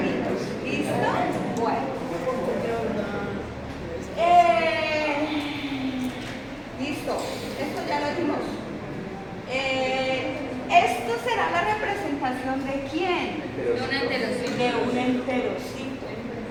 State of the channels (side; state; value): both; identical; correlation 1.00